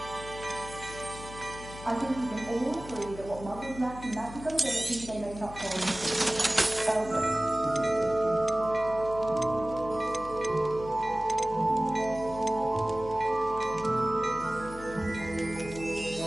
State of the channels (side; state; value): left; noise; hum, 14 dB below the sound